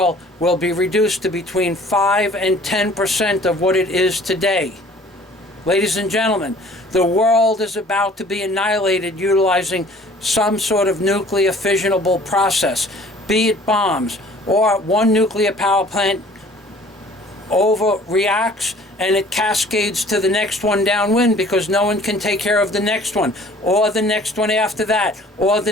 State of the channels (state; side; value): normal; both; correlation 0.52